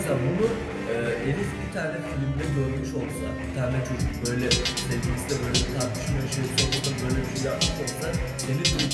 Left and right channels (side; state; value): both; identical; correlation 1.00